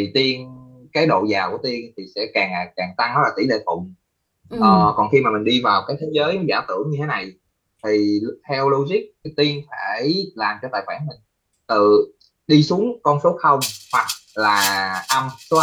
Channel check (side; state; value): both; identical; correlation 1.00